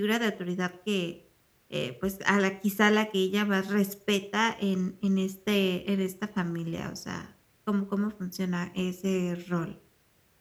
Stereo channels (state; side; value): identical; both; correlation 1.00